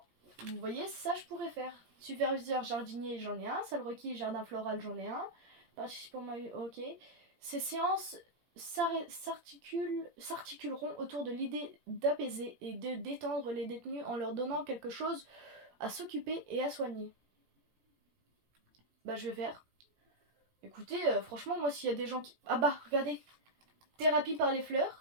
Vous voyez, ça je pourrais faire. Superviseur jardinier, j'en ai un. Salle requis, jardin floral, j'en ai un. Participant, ok. Ces séances s'articuleront autour de l'idée d'apaiser et de détendre les détenus en leur donnant quelque chose à s'occuper et à soigner. Bah je vais faire. Écoutez, franchement, moi s'il y a des gens qui... Ah bah, regardez. Thérapie par les fleurs,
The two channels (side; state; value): left; late; 17 ms